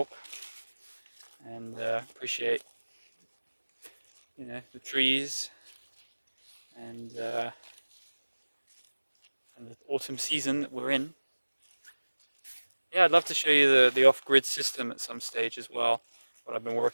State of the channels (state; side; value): inverted; both; correlation -1.00